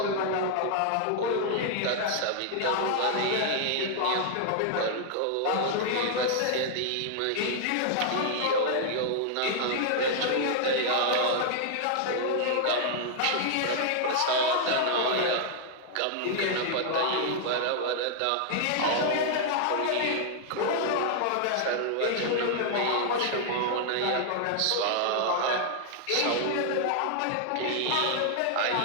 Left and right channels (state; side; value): different; both; correlation 0.00